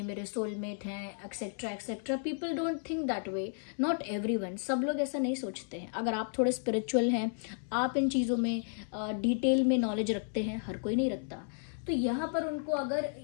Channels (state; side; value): silent; right; 56 dB below the other